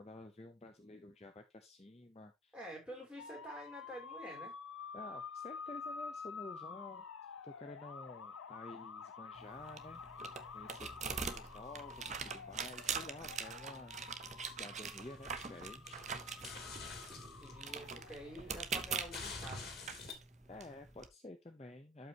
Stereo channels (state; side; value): normal; both; correlation 0.40